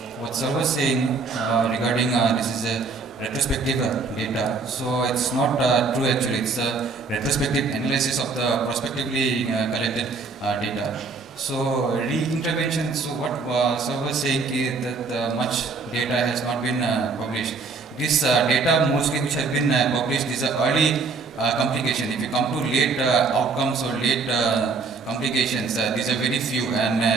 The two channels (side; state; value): left; quieter; 4.3 dB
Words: What Sir was saying regarding this is a retrospective data, so it's not true actually. It's a retrospective analysis of the prospectively collected data. So re-intervention, so what Sir was saying is that much data has not been published. This data mostly which has been published is early complication. If you come to late outcomes or late complications, these are very few, and